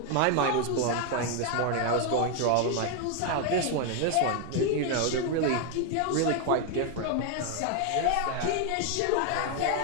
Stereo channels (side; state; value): both; different; correlation 0.01